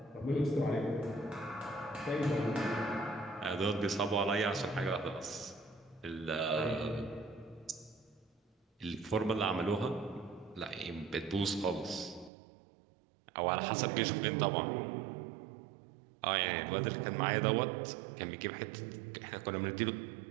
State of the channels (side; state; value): left; drops out; at 12.3 s